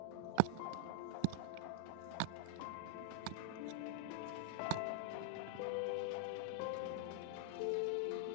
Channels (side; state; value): both; different; correlation -0.01